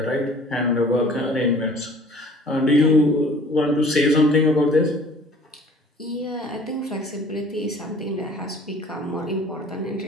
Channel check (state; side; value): normal; both; correlation 0.50